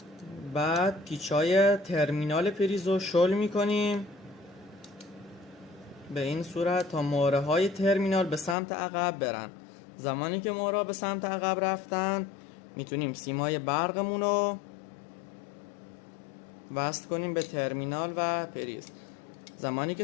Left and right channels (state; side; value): drops out; right; at 8.6 s